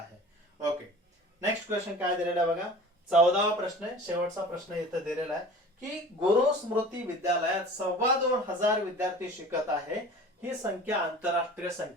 ओके, नेक्स्ट क्वेश्चन काय दिलेला आहे बघा, 14वा प्रश्न आहे, शेवटचा प्रश्न इथं दिलेला आहे की गुरु स्मृती विद्यालयात 2,25,000 विद्यार्थी शिकत आहे. ही संख्या आंतरराष्ट्रीय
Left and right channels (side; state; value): both; normal; correlation 0.42